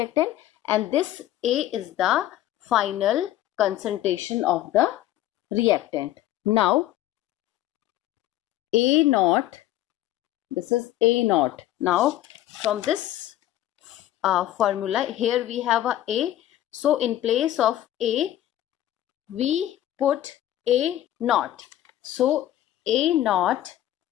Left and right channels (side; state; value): right; quieter; 13.5 dB